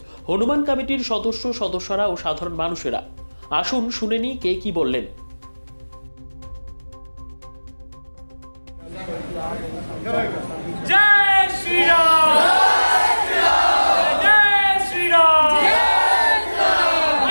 হনুমান কমিটির সদস্যরা ও সাধারণ মানুষেরা। আসুন শুনে নিই কে কি বললেন। जय श्री राम, जय श्री राम।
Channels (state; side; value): inverted; both; correlation -1.00